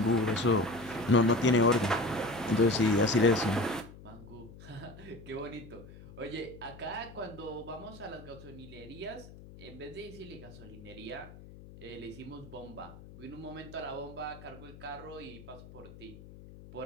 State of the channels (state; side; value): noise; left; hum, 17 dB below the sound